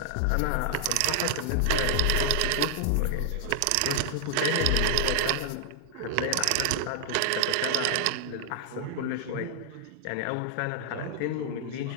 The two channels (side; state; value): both; different; correlation 0.00